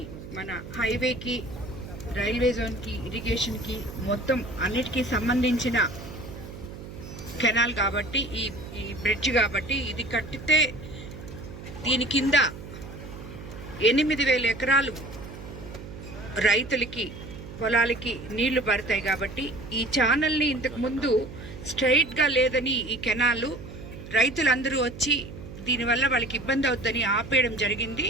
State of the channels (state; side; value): noise; right; hum, 13 dB below the sound